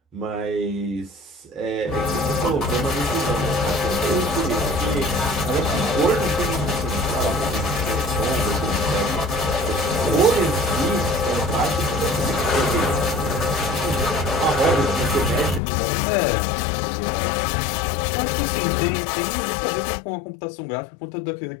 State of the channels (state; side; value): drops out; right; at 15.6 s